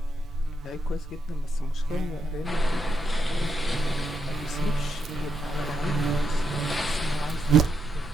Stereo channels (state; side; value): normal; both; correlation 0.81